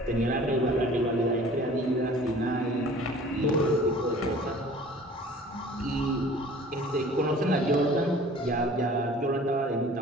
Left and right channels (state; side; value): normal; both; correlation 0.47